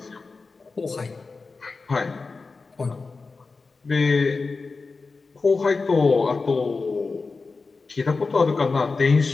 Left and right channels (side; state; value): right; quieter; 4.1 dB